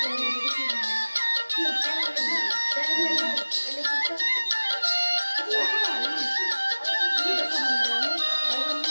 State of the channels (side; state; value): both; inverted; correlation -1.00